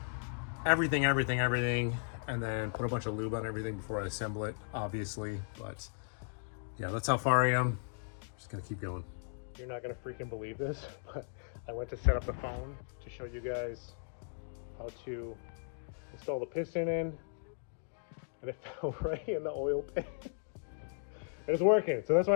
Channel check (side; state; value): right; silent; digital silence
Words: everything, and then put a bunch of lube on everything before I assemble it, obviously. But yeah, that's how far I am. Just gonna keep going. You're not gonna freaking believe this, but I went to set up the phone to show you guys how to install the piston in, and it fell right in the oil pan. And it's working, so that's why